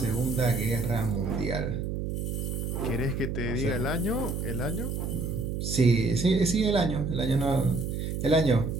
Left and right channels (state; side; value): noise; right; hum, 3 dB below the sound